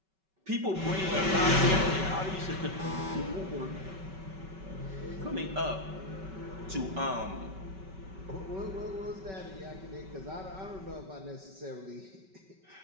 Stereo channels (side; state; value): left; late; 5.3 ms